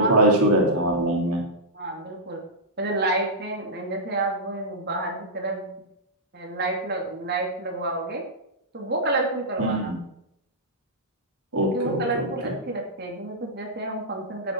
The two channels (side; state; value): both; normal; correlation -0.12